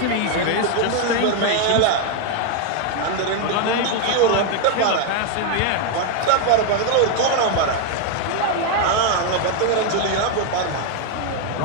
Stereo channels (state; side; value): different; both; correlation 0.01